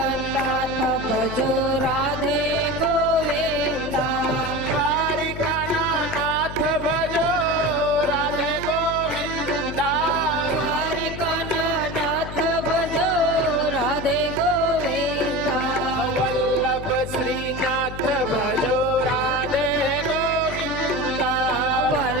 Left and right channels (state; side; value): noise; left; hum, 10 dB below the sound